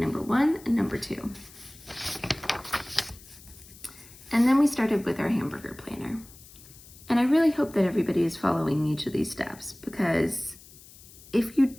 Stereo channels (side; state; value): left; noise; hiss, 21 dB below the sound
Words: 1 and number 2. And then we started with our hamburger planner. And I really hope that everybody is following each of these steps, because if you